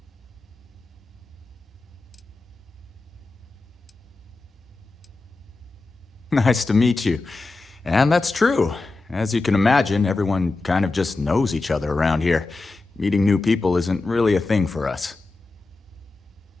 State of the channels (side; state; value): right; quieter; 3.4 dB